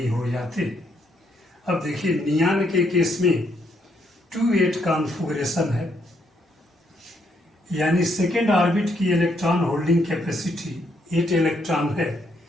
हो जाते। अब देखिए नियान के केस में 2-8 कॉन्फ़िगरेशन है, यानी सेकेंड ऑर्बिट की इलेक्ट्रॉन होल्डिंग कैपेसिटी 8 इलेक्ट्रॉन है।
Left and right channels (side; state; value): both; normal; correlation 0.74